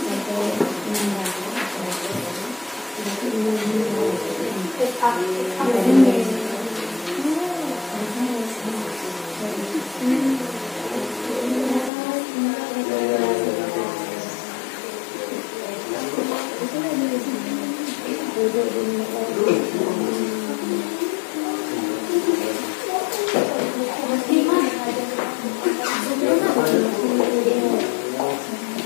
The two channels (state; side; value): drops out; right; at 11.9 s